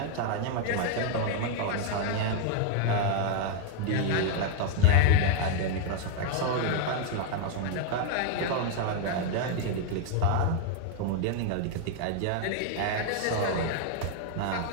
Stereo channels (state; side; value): different; both; correlation 0.00